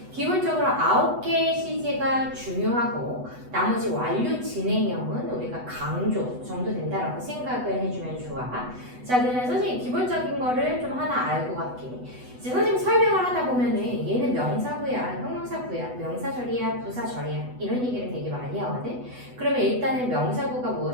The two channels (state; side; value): late; left; 8.0 ms